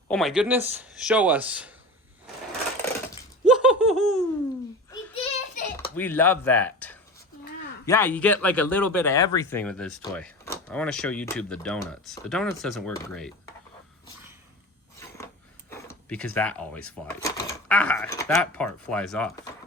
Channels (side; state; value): both; normal; correlation 0.32